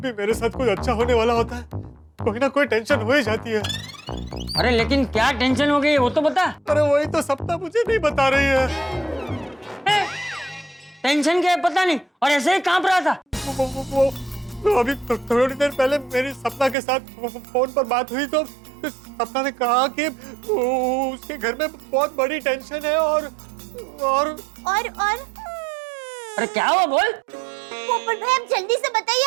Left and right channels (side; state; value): left; drops out; at 16.8 s